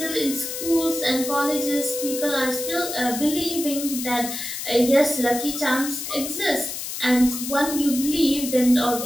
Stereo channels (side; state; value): left; noise; hiss, 6 dB below the sound